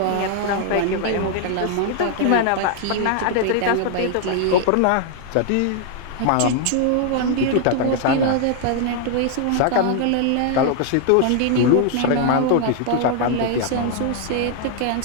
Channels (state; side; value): different; both; correlation 0.00